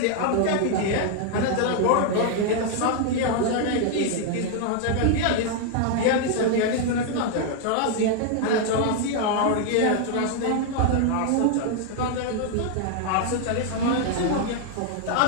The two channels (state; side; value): different; both; correlation 0.00